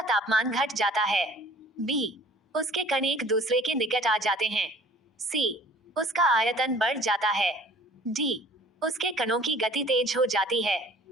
तापमान घट जाता है। बी, उसके कण एक दूसरे के निकट आ जाते हैं। सी, उसका आयतन बढ़ जाता है। डी, उसके कणों की गति तेज हो जाती है।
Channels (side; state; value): both; normal; correlation 0.50